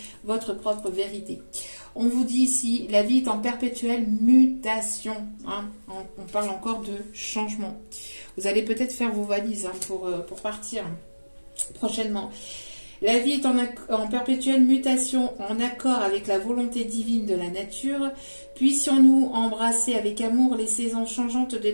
votre propre vérité. On vous dit ici, la vie est en perpétuelle mutation. Hein. On parle encore de changement. Vous allez peut-être faire vos valises pour partir prochainement. La vie est en perpétuelle mutation, en accord avec la volonté divine de la nature. Puissions-nous embrasser avec amour les saisons changeantes de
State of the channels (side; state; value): both; inverted; correlation -1.00